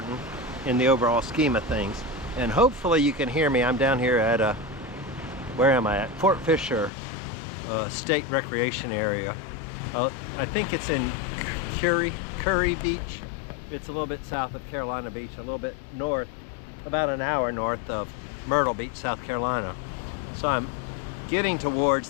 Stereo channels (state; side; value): drops out; right; at 6.9 s